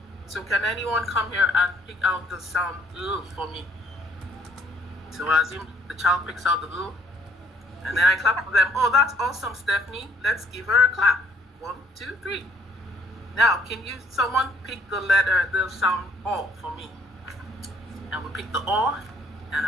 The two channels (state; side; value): normal; both; correlation 0.64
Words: So can anyone come here and pick out the sound L for me? So I assume the child picks out the L. And then I clap for them. Oh, that's awesome, Stephanie. Let's give her a clap. 1, 2, 3. Now, can someone pick the sound O for me? And we pick the O. And